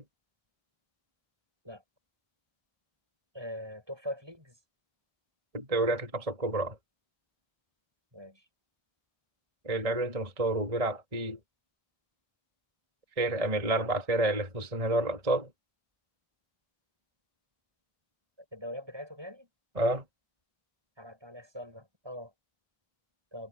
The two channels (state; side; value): late; left; 1.6 ms